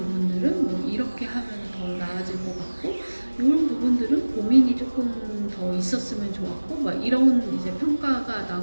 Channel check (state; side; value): inverted; both; correlation -1.00